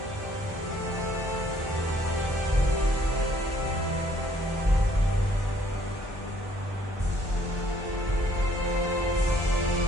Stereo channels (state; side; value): normal; both; correlation 0.63